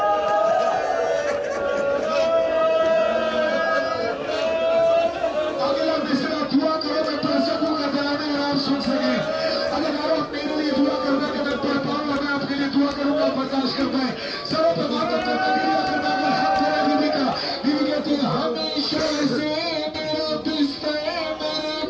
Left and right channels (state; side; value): identical; both; correlation 1.00